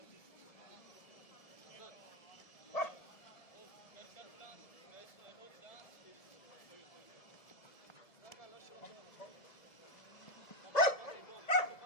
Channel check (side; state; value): right; late; 1.7 ms